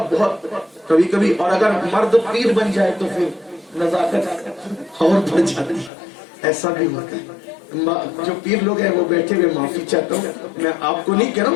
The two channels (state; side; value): drops out; right; at 5.9 s